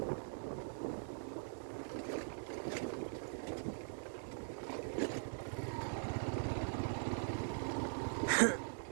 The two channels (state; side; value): silent; left; digital silence